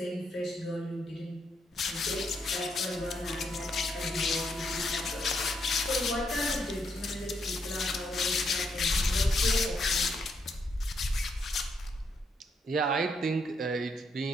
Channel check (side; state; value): both; normal; correlation 0.76